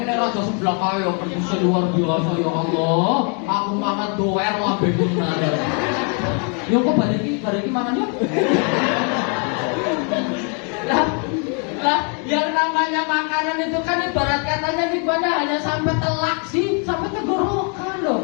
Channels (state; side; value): quieter; right; 38.3 dB